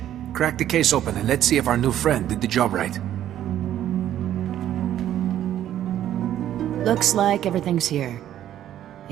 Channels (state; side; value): quieter; left; 11.6 dB